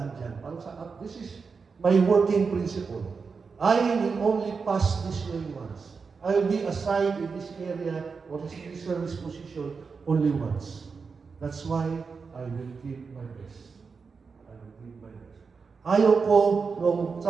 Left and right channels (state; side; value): quieter; left; 5.1 dB